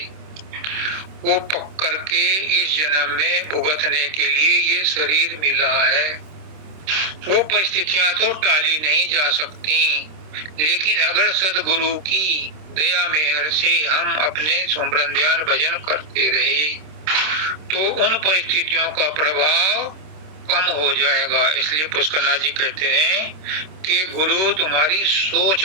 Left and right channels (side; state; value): left; late; 26 ms